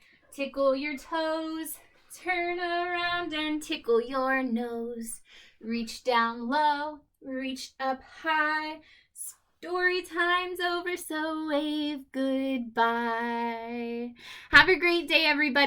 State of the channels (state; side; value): identical; both; correlation 1.00